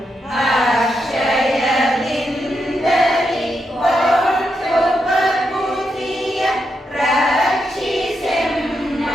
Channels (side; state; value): both; normal; correlation 0.83